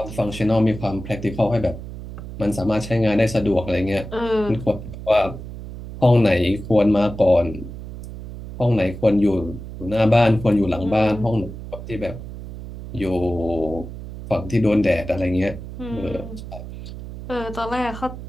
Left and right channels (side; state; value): right; noise; hum, 11 dB below the sound